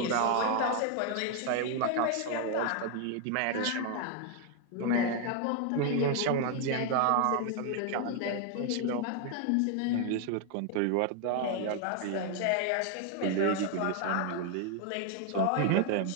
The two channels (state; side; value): different; both; correlation 0.00